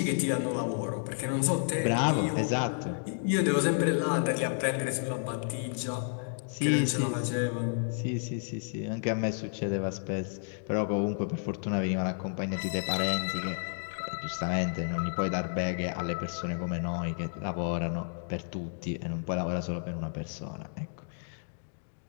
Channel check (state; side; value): silent; right; digital silence